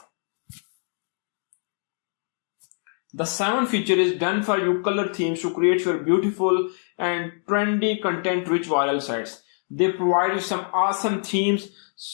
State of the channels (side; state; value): right; silent; 62 dB below the other